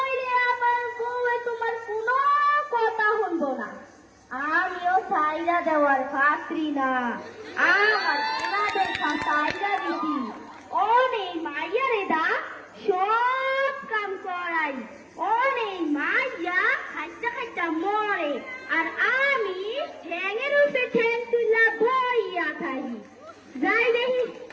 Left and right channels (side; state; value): both; identical; correlation 1.00